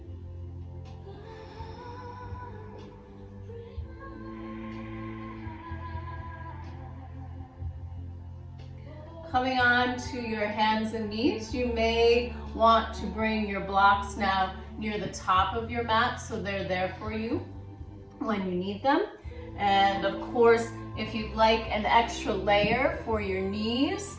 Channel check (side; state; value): both; identical; correlation 1.00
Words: Coming on to your hands and knees, you may want to bring your blocks now near the top of your mat so they're there for you when you need them. And of course, if you'd like an extra layer for your knees,